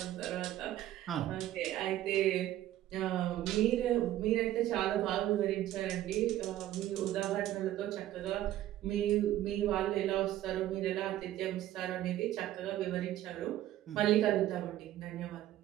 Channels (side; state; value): left; quieter; 13.5 dB